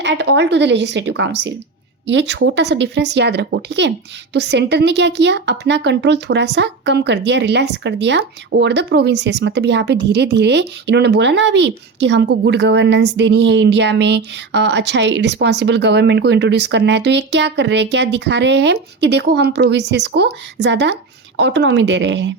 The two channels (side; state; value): left; quieter; 4.3 dB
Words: at all to the legislative council. ये छोटा सा डिफरेंस याद रखो। ठीक है, तो सेंटर ने क्या किया? अपना कंट्रोल थोड़ा सा कम कर दिया, रिलैक्स कर दिया ओवर द प्रोविंसेस। मतलब यहाँ पे धीरे धीरे इन्होंने बोला ना अभी कि हमको गुड गवर्नेंस देनी है इंडिया में, अच्छा रिस्पॉन्सिबल गवर्नमेंट को इंट्रोड्यूस करना है। तो ये क्या कर रहे हैं, क्या दिखा रहे हैं कि देखो हम प्रोविंसेस को ज़्यादा ऑटोनॉमी दे रहे